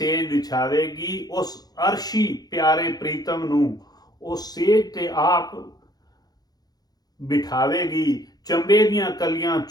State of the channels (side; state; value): right; late; 0.19 ms